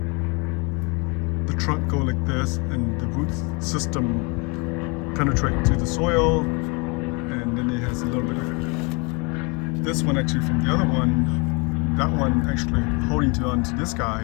The trunk go like this, and the root system penetrate to the soil, and then it has a little bit of it. This one actually from the other one, that one actually holding onto this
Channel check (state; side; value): quieter; right; 30.6 dB